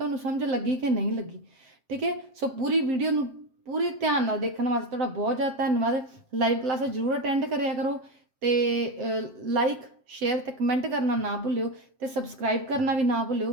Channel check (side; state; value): left; late; 7.5 ms